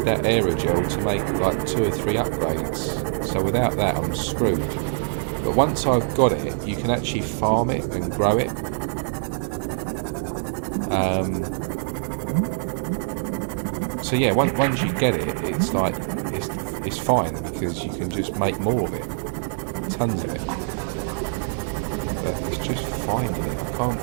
that aerogel to make like 2 or 3 upgrades, so without that I'm screwed. But once I've got it, you can actually farm it and grow it. So yeah, once you get it, it's like it's fine, because you can just make more of it, tons of it. But it's just finding it. I can't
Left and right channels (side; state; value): left; silent; 62 dB below the other